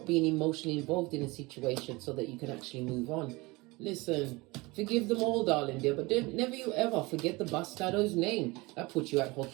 being emotionally involved in a situation so that you can actually move on. Listen, forgive them all, darling dear, but never you ever forget the bastard's name. That puts you at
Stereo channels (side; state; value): left; quieter; 23.5 dB